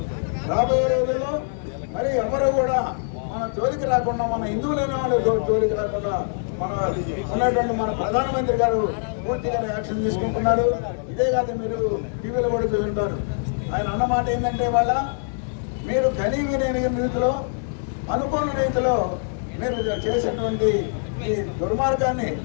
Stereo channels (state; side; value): silent; right; digital silence